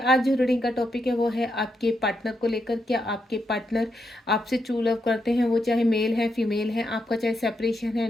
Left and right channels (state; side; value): normal; both; correlation 0.82